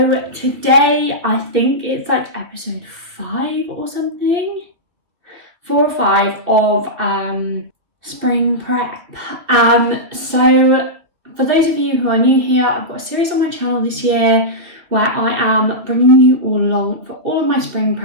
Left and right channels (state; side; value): late; left; 2.8 ms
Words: today I think it's like episode 5 or something, 4 or 5 of spring prep. So for those of you who are new here, I've got a series on my channel this year where I am bringing you all along for all of my spring